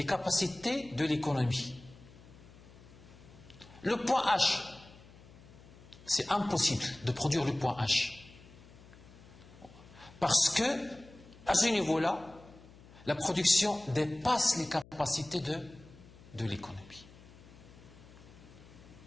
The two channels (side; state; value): left; noise; hum, 21 dB below the sound